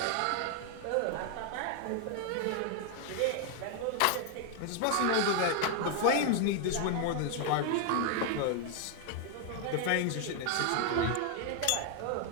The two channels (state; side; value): different; both; correlation 0.00